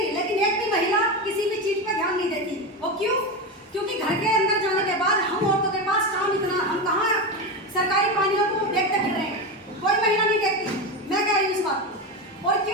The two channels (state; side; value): normal; both; correlation 0.18